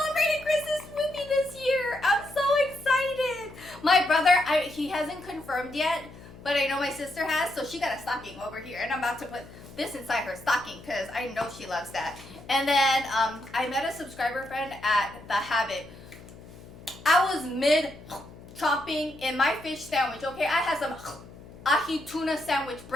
Christmas with me this year. I'm so excited. My brother, he hasn't confirmed yet, but I know my sister has, so she got a stocking over here. And I'm about to put this inside her stocking because I know she loves that. And then I met a subscriber friend at The Habit. I was mid chopping in my fish sandwich, okay? I had some ahi tuna sandwich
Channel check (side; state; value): left; noise; hum, 18 dB below the sound